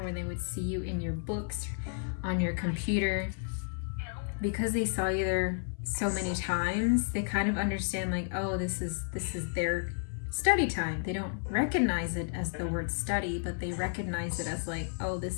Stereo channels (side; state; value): right; silent; 56 dB below the other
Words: when they would see you in your books, on your computer, because they saw you there so many times, they kind of understand like, oh, this is their study time. They don't recognize it as the word study, but they recognize it as like, oh,